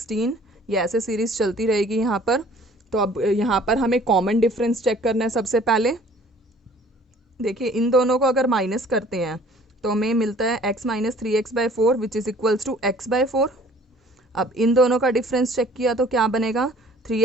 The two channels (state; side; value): normal; both; correlation 0.53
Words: ये ऐसे सीरीज चलती रहेगी यहाँ पर. तो अब यहाँ पर हमें कॉमन डिफरेंस चेक करना है. सबसे पहले देखिए इन दोनों को अगर माइनस करते हैं तो हमें मिलता है x minus 3x/4 which is equals to x/4. अब इन दोनों का डिफरेंस चेक किया तो क्या बनेगा,